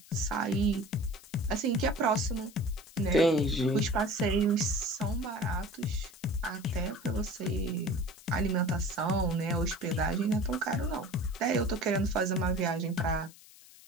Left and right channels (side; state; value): left; noise; hiss, 22 dB below the sound